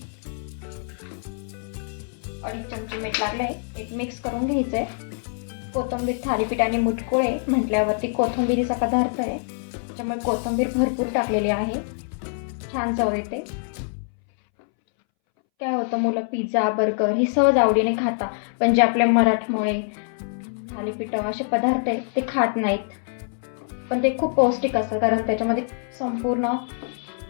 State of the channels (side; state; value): right; silent; 62 dB below the other